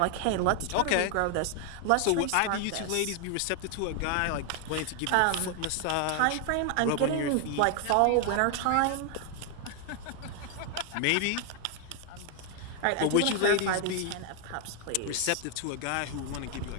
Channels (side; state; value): both; different; correlation 0.00